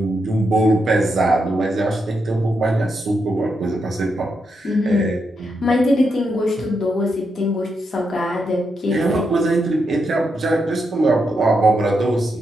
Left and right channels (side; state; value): both; normal; correlation 0.83